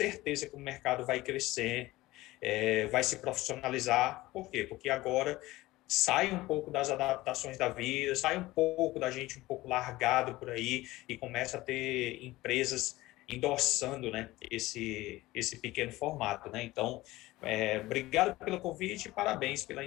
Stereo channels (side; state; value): right; quieter; 18.4 dB